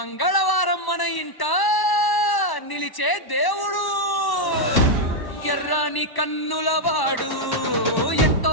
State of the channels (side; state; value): right; late; 1.0 ms